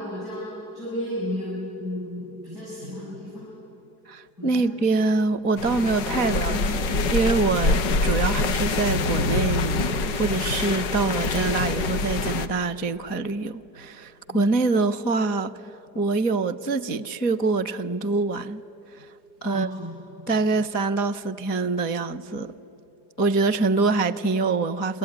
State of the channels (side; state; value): right; late; 4.9 ms